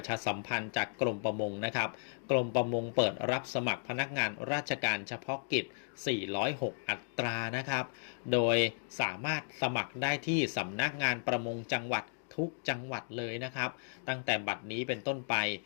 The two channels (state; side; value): silent; right; digital silence